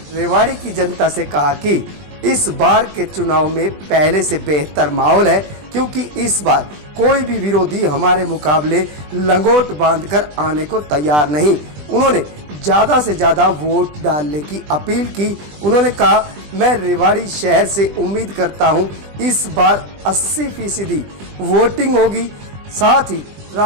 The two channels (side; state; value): left; late; 20 ms